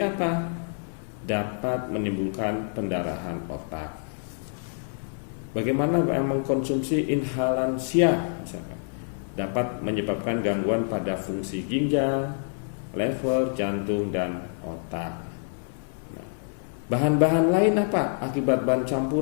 Dapat menimbulkan pendarahan otak. Bagaimana mengkonsumsi inhalansia misalkan? Dapat menyebabkan gangguan pada fungsi ginjal, lever, jantung, dan otak. Bahan-bahan lain apa? Akibat bahan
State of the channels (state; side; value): silent; right; 60 dB below the other